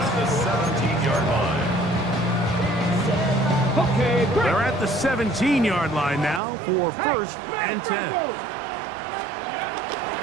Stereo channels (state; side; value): drops out; left; at 6.4 s